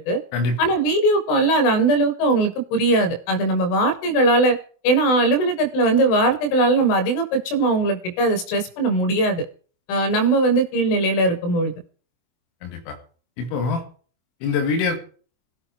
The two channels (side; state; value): right; late; 24 ms